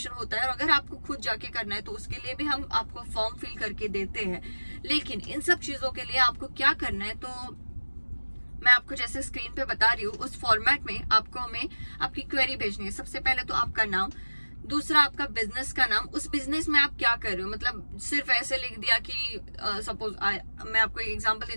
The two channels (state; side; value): inverted; both; correlation -1.00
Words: होता है और अगर आपको खुद जाके करना है तो उसके लिए भी हम आपको फॉर्म फिल करके देते हैं। लेकिन इन सब चीजों के लिए आपको क्या करना है, तो मैं आपको जैसे स्क्रीन पे बता रही हूँ उस फॉर्मेट में आपको हमें आपकी क्वेरी भेजनी है। सबसे पहले तो आपका नाम, दूसरा आपका बिजनेस का नाम, उस बिजनेस में आप क्या कर रहे हो, मतलब सिर्फ ऐसे लिख दिया कि सपोज मैं आपको एक एग्जांपल